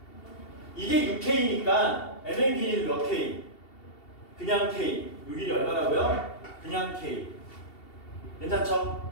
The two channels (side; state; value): right; late; 2.7 ms